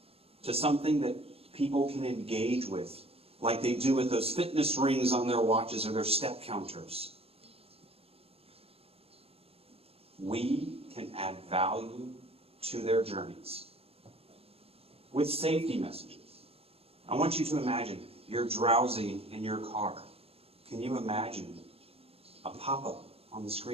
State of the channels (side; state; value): left; late; 0.28 ms